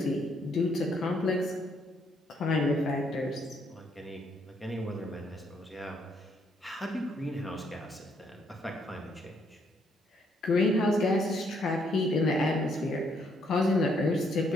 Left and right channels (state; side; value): normal; both; correlation 0.71